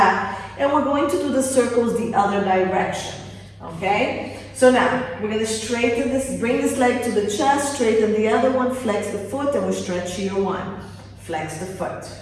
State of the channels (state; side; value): identical; both; correlation 1.00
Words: And we're going to do the circles the other direction. Okay? So now, we're going to straighten this, bring this leg to the chest, straighten the other one, flex the foot, and we'll stretch here 1. Flex the foot.